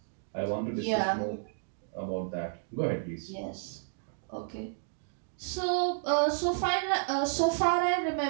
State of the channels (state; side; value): silent; left; digital silence